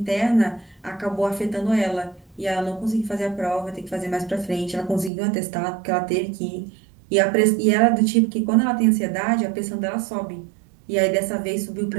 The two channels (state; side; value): drops out; left; at 5.1 s